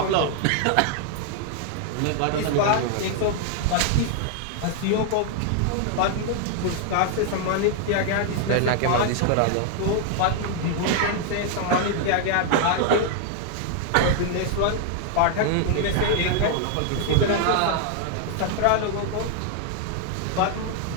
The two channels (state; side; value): different; both; correlation 0.00